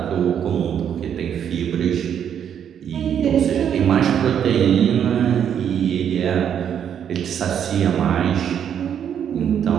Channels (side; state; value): left; quieter; 8.8 dB